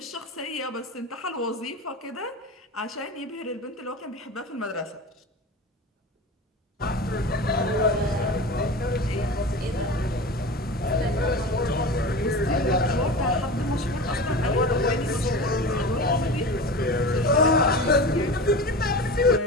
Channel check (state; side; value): normal; both; correlation 0.31